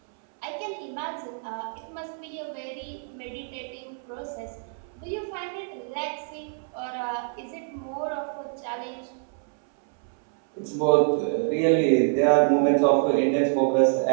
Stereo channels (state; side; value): silent; left; 61 dB below the other